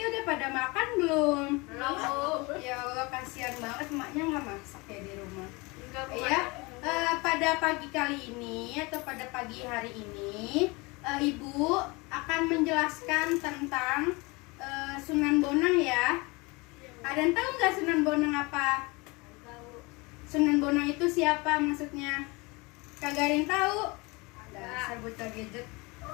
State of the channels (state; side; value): quieter; right; 25.9 dB